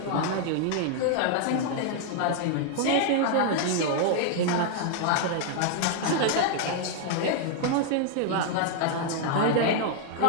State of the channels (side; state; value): both; different; correlation 0.00